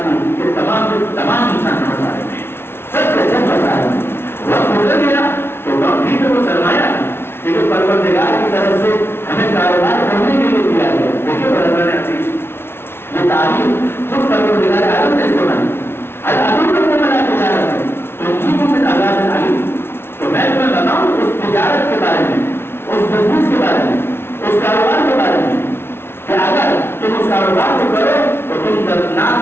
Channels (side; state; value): right; late; 0.12 ms